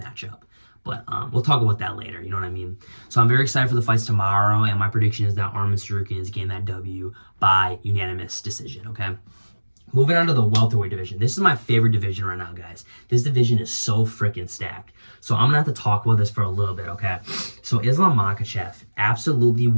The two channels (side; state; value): both; inverted; correlation -1.00